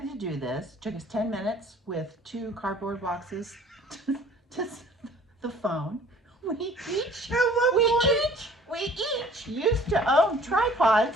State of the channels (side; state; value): both; normal; correlation 0.52